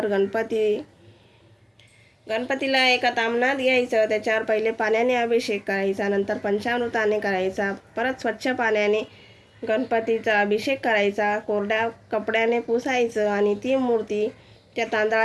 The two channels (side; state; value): both; identical; correlation 1.00